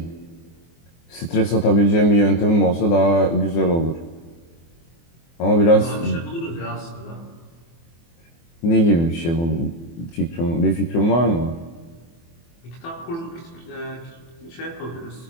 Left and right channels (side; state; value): right; late; 24 ms